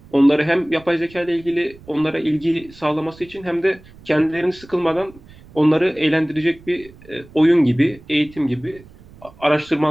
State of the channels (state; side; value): noise; right; rumble, 23 dB below the sound